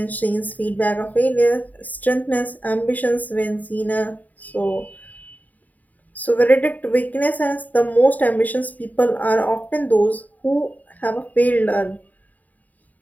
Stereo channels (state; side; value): late; right; 0.077 ms